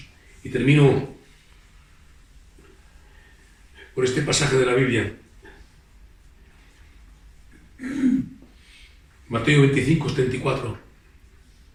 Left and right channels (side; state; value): both; identical; correlation 1.00